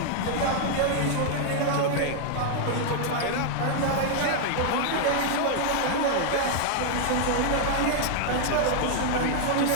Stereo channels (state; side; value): different; both; correlation 0.00